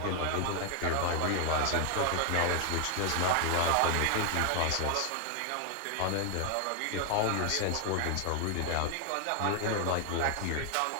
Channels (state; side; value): different; both; correlation 0.00